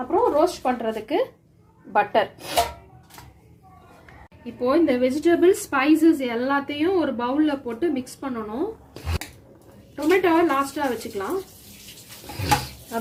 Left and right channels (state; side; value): identical; both; correlation 1.00